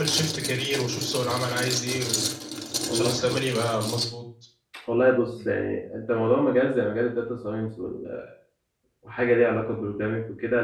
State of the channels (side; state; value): both; identical; correlation 1.00